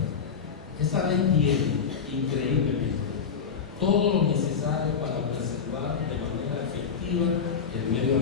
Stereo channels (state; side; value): quieter; right; 6.5 dB